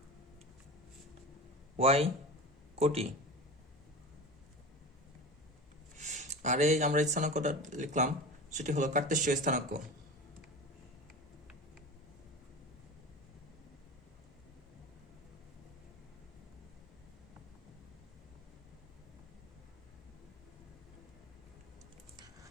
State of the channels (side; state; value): both; normal; correlation 0.31